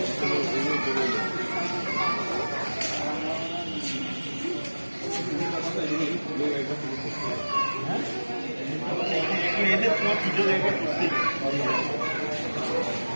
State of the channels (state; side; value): inverted; both; correlation -1.00